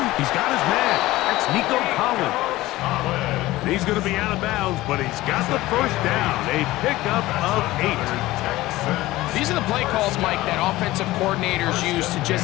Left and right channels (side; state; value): right; quieter; 17.6 dB